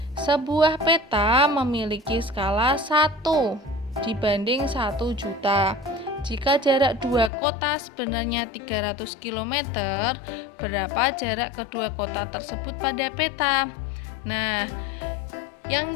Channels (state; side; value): drops out; right; at 7.3 s